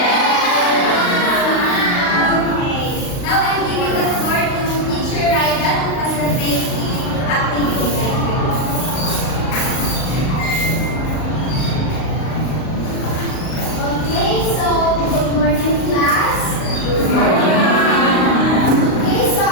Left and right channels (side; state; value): right; late; 38 ms